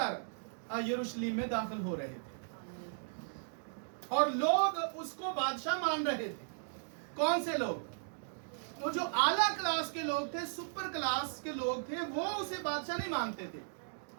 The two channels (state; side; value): silent; left; digital silence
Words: यरूशलेम में दाखिल हो रहे थे और लोग उसको बादशाह मान रहे थे। कौन से लोग? तो जो आला क्लास के लोग थे, सुपर क्लास के लोग थे, वो उसे बादशाह नहीं मानते थे।